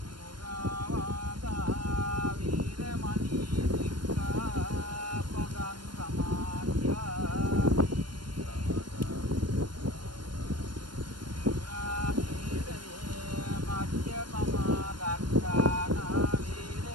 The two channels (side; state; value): left; late; 0.72 ms